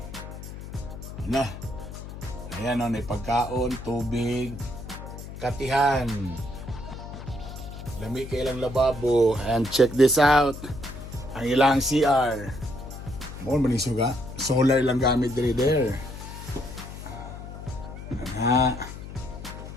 Nah. Ayan o, may pagkaon, tubig, katihan. Lami ka ilang lababo. And check this out. Ang ilang CR. More manisuga. Solar lang gamit diri there.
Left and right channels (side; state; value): left; noise; hum, 11 dB below the sound